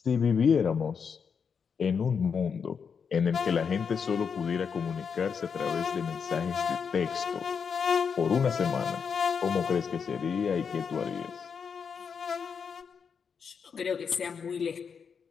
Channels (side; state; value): right; quieter; 6.3 dB